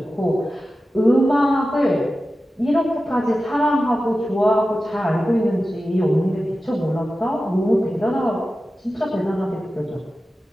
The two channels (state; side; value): normal; both; correlation 0.94